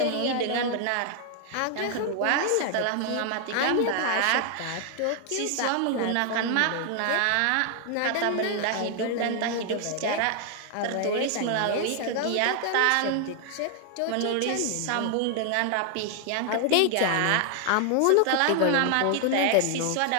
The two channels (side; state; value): both; different; correlation 0.00